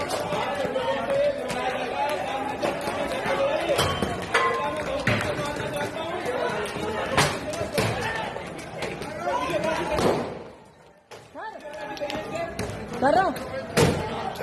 कर रहा हूँ।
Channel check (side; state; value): both; identical; correlation 1.00